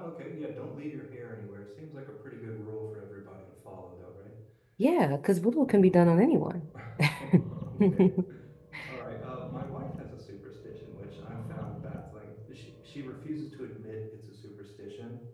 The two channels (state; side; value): identical; both; correlation 1.00